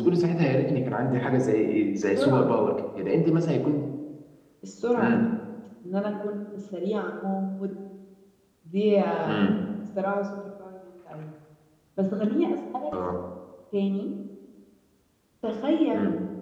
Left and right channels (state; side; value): identical; both; correlation 1.00